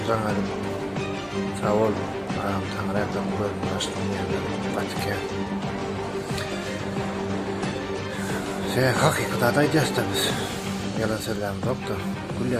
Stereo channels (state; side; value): identical; both; correlation 1.00